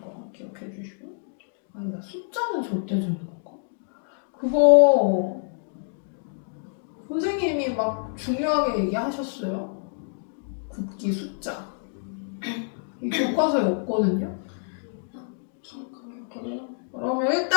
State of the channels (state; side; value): silent; right; digital silence